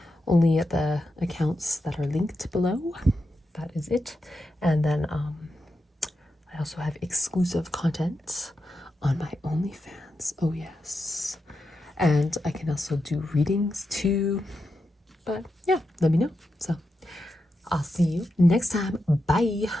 only at the accounts that are linked below. That is it. And then I also have exclusive content on my OnlyFans. Oh yes. And I can also do readings too. But yeah, let me know. So I'll see you next time. Bye.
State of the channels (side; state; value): both; normal; correlation 0.88